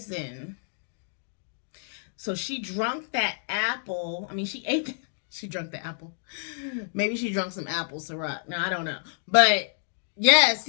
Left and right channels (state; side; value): silent; right; digital silence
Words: So she drank that apple. I mean, she ate it. She drank the apple. Maybe she drank some apple syrup. Now, I don't know. But, yeah,